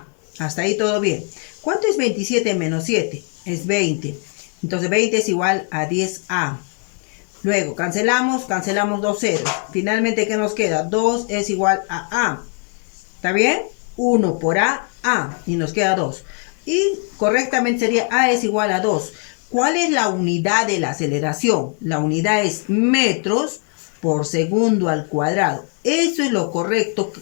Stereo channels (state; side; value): quieter; right; 39.5 dB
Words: Hasta ahí todo bien. ¿Cuánto es 27 menos 7? Es 20. Entonces 20 es igual a 10A. Luego cancelamos dos ceros. Finalmente, ¿qué nos queda? 2 es igual a A. ¿Está bien? 1 por A, A. Y nos queda 2. Y correctamente sería A es igual a 2. ¿Cuál es la unidad de la aceleración? La unidad es metros por segundo al cuadrado. Eso es lo correcto,